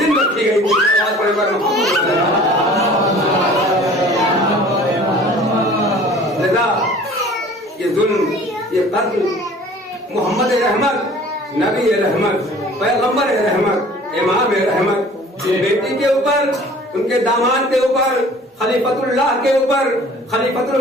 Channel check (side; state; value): both; normal; correlation 0.48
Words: دن رکھی گئی تھی۔ لذا یہ ظلم، یہ قتل محمد رحمت، نبی رحمت، پیغمبر رحمت، امام رحمت بیٹی کے اوپر، ان کے داماد کے اوپر، خلیفۃ اللہ کے اوپر، خلیفۃ